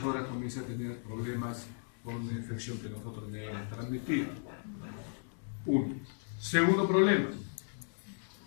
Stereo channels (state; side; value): silent; right; digital silence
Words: horas comience a tener problemas con una infección que nosotros debemos transmitir. 1. Segundo problema.